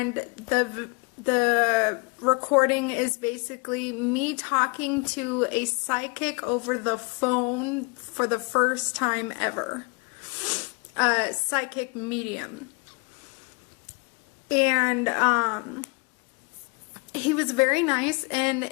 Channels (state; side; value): quieter; right; 32.1 dB